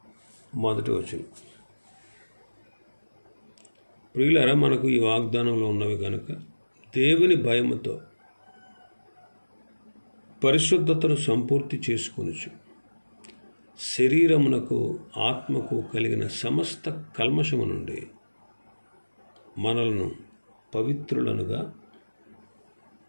1వ వచనం. ప్రియులారా, మనకు ఈ వాగ్దానంలో ఉన్నవి కనుక దేవుని భయముతో పరిశుద్ధతను సంపూర్తి చేసుకొనుచు శరీరమునకు ఆత్మకు కలిగిన సమస్త కల్మషము నుండి మనలను పవిత్రులనుగా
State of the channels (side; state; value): both; inverted; correlation -1.00